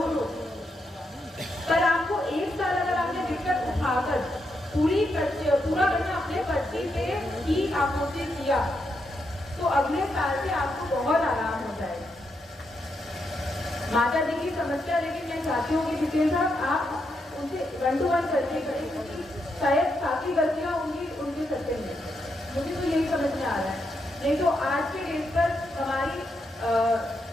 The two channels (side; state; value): both; normal; correlation 0.82